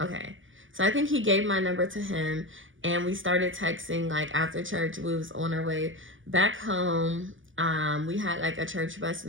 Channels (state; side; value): late; left; 0.57 ms